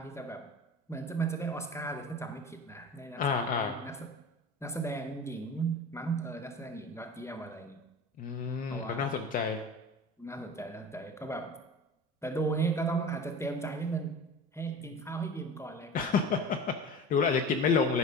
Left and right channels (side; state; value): both; normal; correlation 0.35